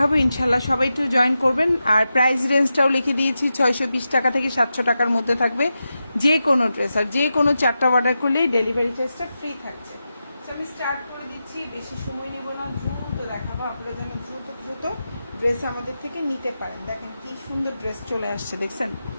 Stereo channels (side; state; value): both; inverted; correlation -0.90